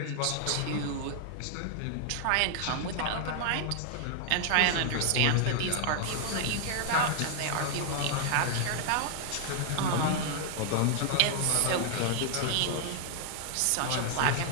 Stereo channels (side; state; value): both; different; correlation 0.00